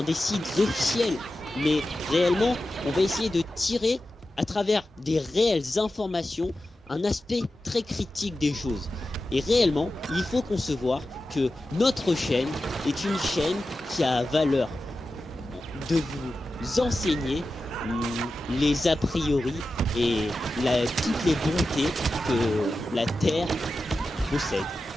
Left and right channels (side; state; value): both; normal; correlation 0.92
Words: des sites officiels. Mais réellement, on va essayer de tirer à travers des réelles informations un aspect très critique des choses. Et réellement, il faut concevoir que notre chaîne est une chaîne qui a valeur de vous enseigner les a priori et toutes les bontés que la Terre possède.